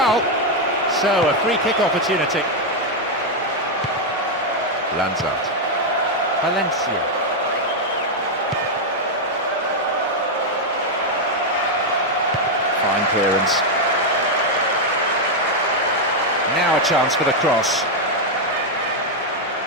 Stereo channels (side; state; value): both; normal; correlation 0.01